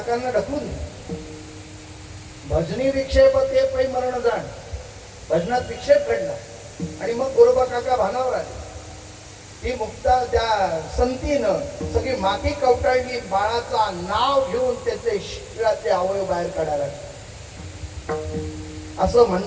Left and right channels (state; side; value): identical; both; correlation 1.00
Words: ढकलून भजनी विक्षेप ते पै मरण जाण. भजनात विक्षेप घडला आणि मग गोरोबा काका भानावर आले. ती मुक्ता त्या संतीनं सगळी माती कवटाळली. बाळाचा नाव घेऊन त्याचे शरीरातले अवयव बाहेर काढायला. असं